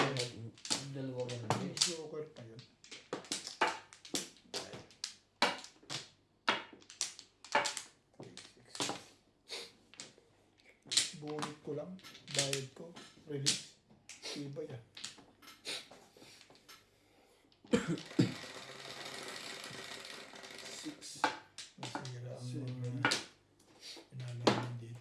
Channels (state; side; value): identical; both; correlation 1.00